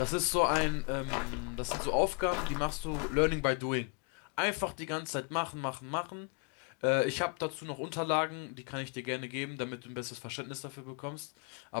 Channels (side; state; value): right; quieter; 32.4 dB